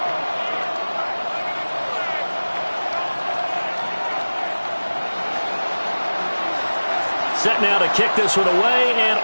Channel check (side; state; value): both; inverted; correlation -1.00